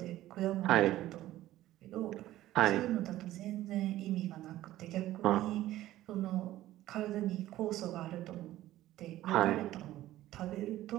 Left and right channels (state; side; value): quieter; left; 14.8 dB